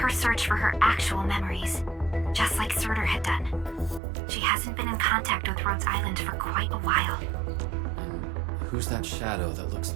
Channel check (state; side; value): drops out; left; at 4.0 s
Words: search for her actual memories, just like Surtur had done. She hasn't been in contact with Rhodes Island for quite a while. And who's that shadow that looks